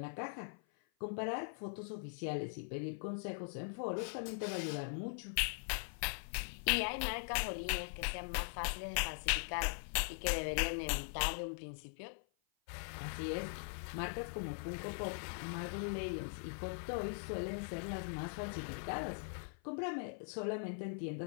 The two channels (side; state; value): right; silent; 50 dB below the other